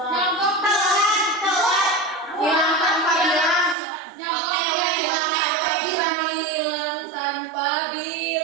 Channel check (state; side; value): drops out; left; at 3.8 s